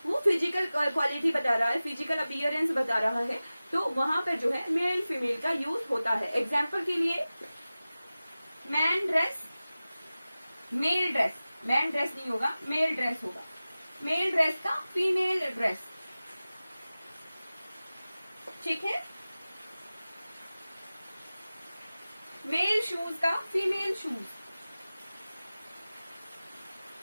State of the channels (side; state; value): both; inverted; correlation -0.96